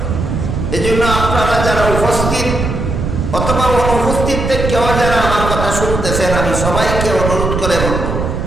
এই জন্য আপনারা যারা উপস্থিত অথবা অনুপস্থিত কেউ যারা আমার কথা শুনতেছেন, আমি সবাইকে অনুরোধ করে বলব,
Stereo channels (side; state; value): right; noise; rumble, 3 dB below the sound